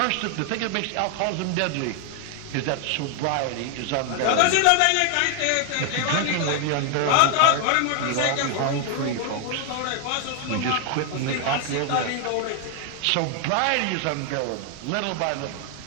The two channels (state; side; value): different; both; correlation 0.00